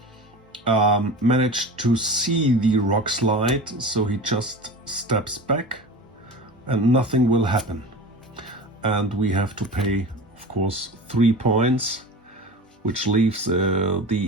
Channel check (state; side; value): normal; both; correlation 0.33